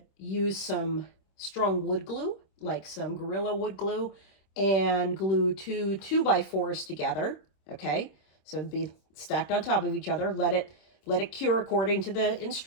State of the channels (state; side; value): late; right; 26 ms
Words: use some strong wood glue, like some Gorilla wood glue, and glue two 2x4s together. Okay, so it'd be stacked on top of each other. Let it cure according to the